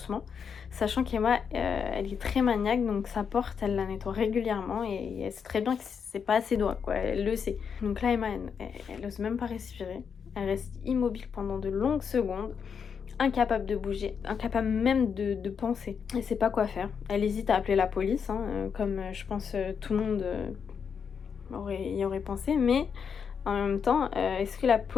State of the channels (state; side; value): quieter; right; 6.6 dB